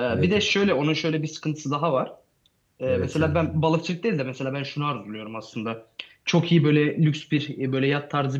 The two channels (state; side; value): identical; both; correlation 1.00